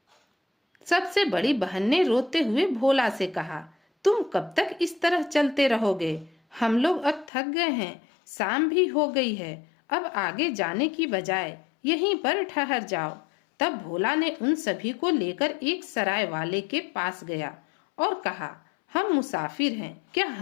सबसे बड़ी बहन ने रोते हुए भोला से कहा, तुम कब तक इस तरह चलते रहोगे? हम लोग अब थक गए हैं, शाम भी हो गई है। अब आगे जाने की बजाय यहीं पर ठहर जाओ। तब भोला ने उन सभी को लेकर एक सराय वाले के पास गया और कहा, हम मुसाफिर हैं, क्या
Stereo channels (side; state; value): right; drops out; at 7.3 s